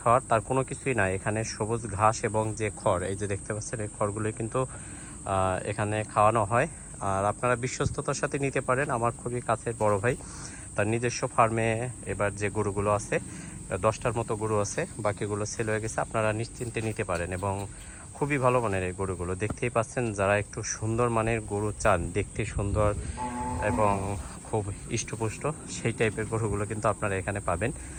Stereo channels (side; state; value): both; identical; correlation 1.00